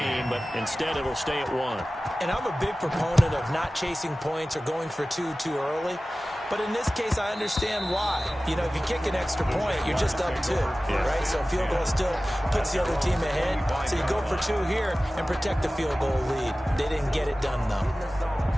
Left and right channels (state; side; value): normal; both; correlation 0.96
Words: but instead it'll stay at 1. And I'm a big proponent of not chasing points or going for 2 too early. But in this case, I understand why. You know, if you kick an extra point, you're just up 2, right? So a field goal still puts the other team ahead. So you go for 2 here and protect the field goal lead. They didn't get it done, though.